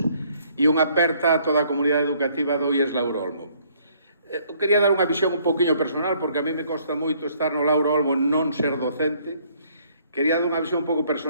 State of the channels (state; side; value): inverted; both; correlation -0.64